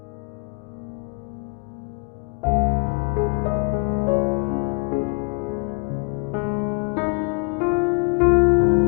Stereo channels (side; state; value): right; quieter; 34.0 dB